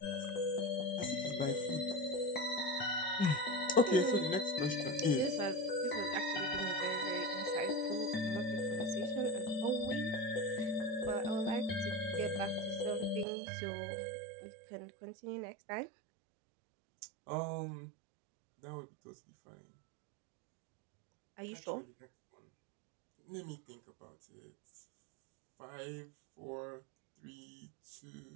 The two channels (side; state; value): left; drops out; at 13.2 s